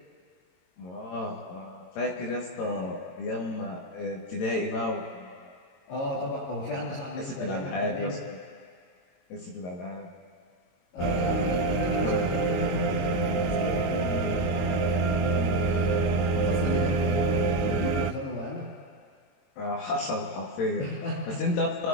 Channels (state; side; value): late; right; 22 ms